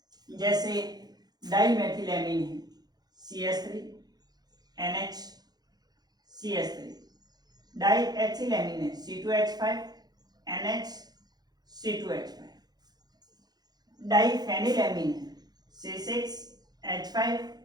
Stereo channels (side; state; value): left; late; 0.19 ms